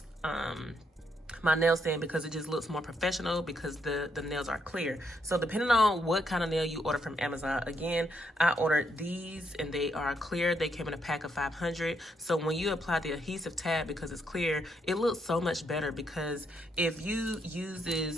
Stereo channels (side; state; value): both; normal; correlation 0.76